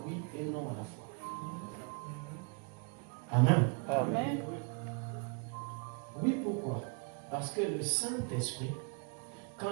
oui et non à la fois. Amen. Amen. Oui, pourquoi? Parce que le Saint-Esprit,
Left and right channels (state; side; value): quieter; left; 35.4 dB